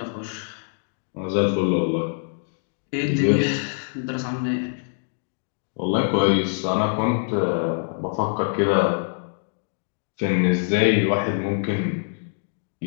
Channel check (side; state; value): right; silent; digital silence